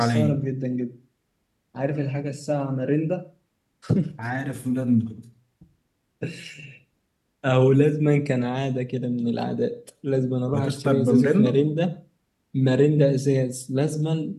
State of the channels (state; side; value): identical; both; correlation 1.00